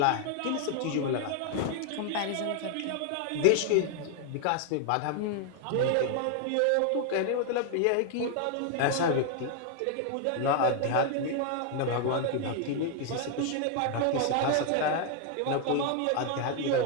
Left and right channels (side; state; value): both; different; correlation 0.00